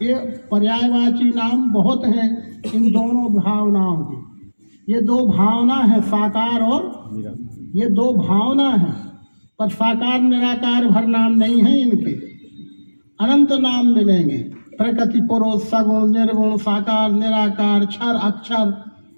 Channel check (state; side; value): inverted; both; correlation -1.00